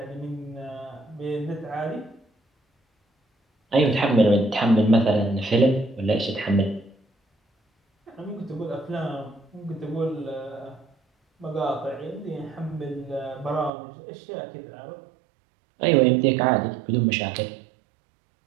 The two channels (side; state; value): left; drops out; at 13.7 s